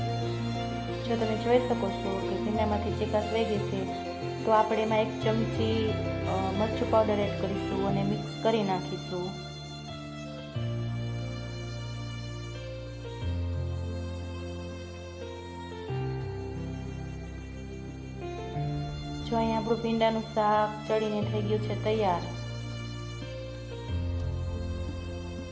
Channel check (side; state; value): both; identical; correlation 1.00